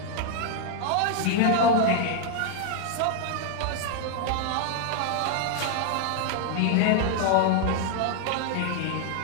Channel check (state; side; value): different; both; correlation 0.00